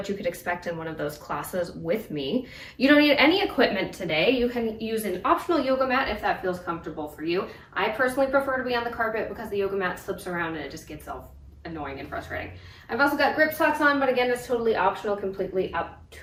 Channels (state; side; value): identical; both; correlation 1.00